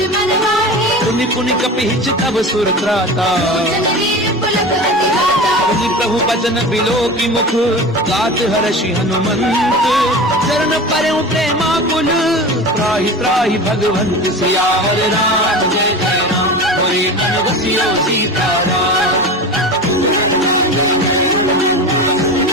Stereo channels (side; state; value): both; normal; correlation 0.31